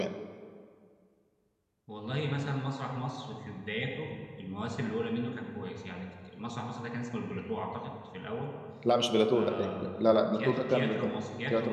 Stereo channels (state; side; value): identical; both; correlation 1.00